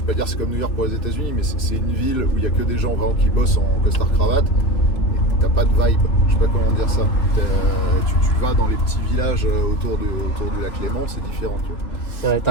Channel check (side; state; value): right; late; 3.0 ms